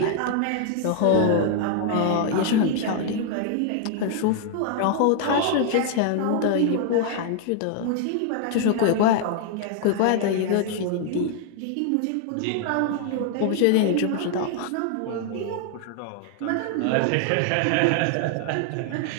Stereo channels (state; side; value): different; both; correlation 0.00